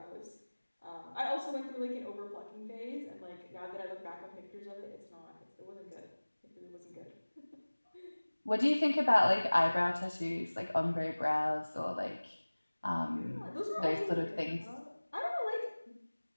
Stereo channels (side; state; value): both; inverted; correlation -1.00